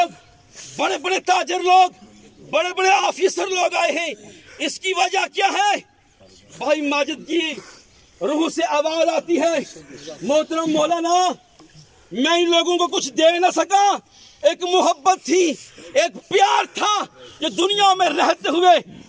बड़े बड़े ताजर लोग, बड़े बड़े ऑफिसर लोग आए हैं। इसकी वजह क्या है? भाई माजिद की रूह से आवाज आती है, मोहतरम मौलाना, मैं इन लोगों को कुछ दे न सका। एक मोहब्बत थी, एक प्यार था, जो दुनिया में रहते हुए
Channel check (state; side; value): identical; both; correlation 1.00